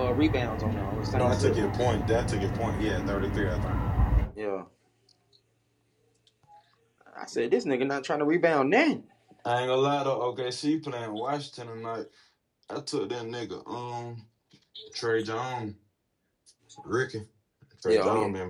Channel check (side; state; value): both; identical; correlation 1.00